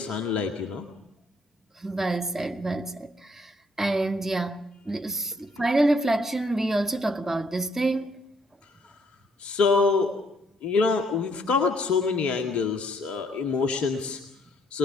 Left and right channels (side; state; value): both; normal; correlation 0.68